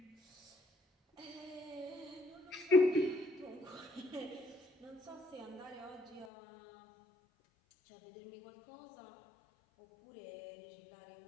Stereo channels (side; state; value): right; drops out; at 6.3 s